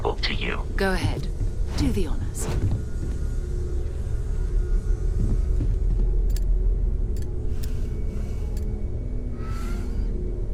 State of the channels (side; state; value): both; identical; correlation 1.00